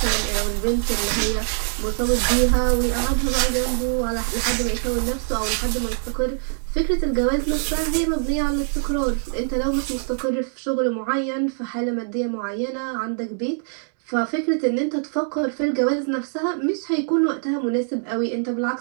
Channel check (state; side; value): silent; left; digital silence